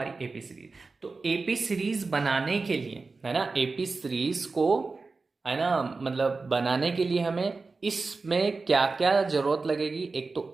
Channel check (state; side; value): quieter; left; 4.0 dB